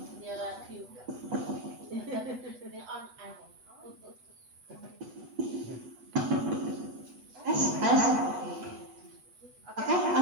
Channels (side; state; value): left; late; 8.1 ms